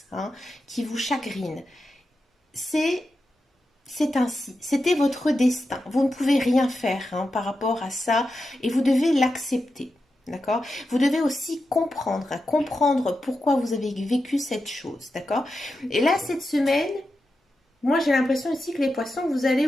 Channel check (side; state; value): both; normal; correlation 0.89